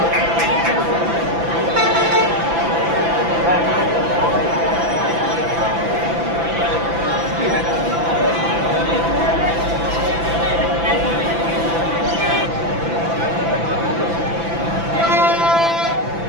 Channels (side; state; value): left; late; 6.0 ms